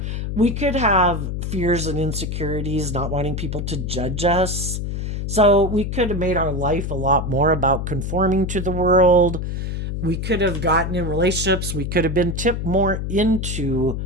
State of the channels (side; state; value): left; noise; hum, 3 dB below the sound